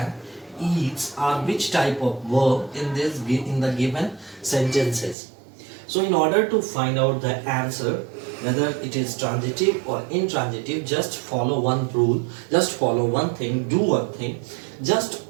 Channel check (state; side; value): drops out; left; at 5.2 s